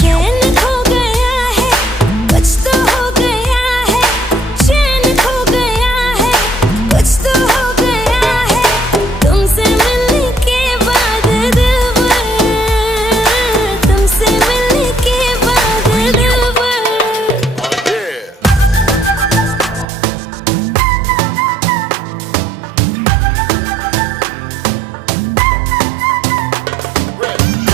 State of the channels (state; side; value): drops out; left; at 19.9 s